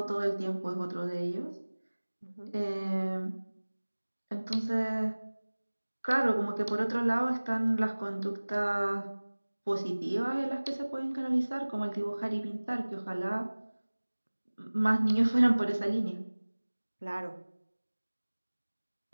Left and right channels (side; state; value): both; inverted; correlation -1.00